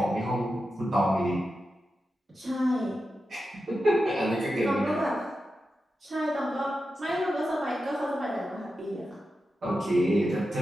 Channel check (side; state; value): both; normal; correlation 0.90